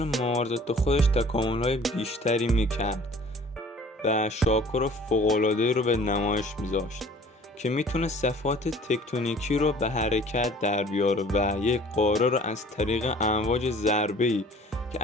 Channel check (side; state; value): both; normal; correlation 0.50